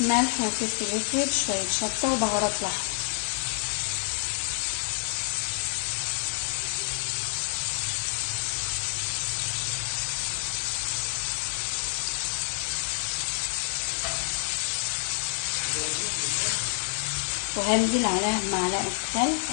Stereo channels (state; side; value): silent; right; 59 dB below the other